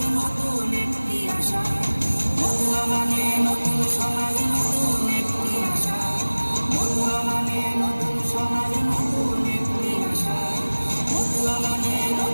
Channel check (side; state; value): both; inverted; correlation -1.00